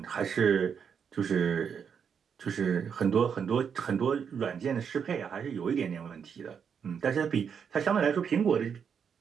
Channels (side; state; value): left; quieter; 7.1 dB